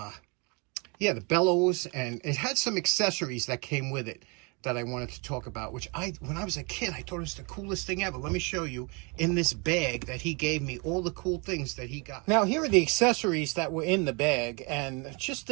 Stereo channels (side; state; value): left; quieter; 31.2 dB